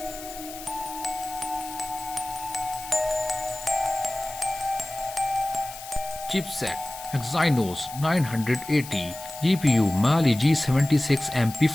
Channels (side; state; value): left; noise; hiss, 13 dB below the sound